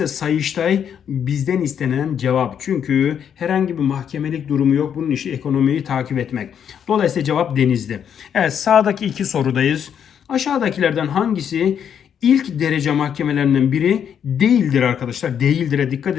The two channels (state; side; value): quieter; right; 8.4 dB